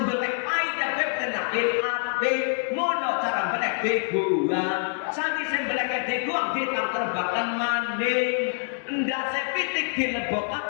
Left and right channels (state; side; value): silent; right; 61 dB below the other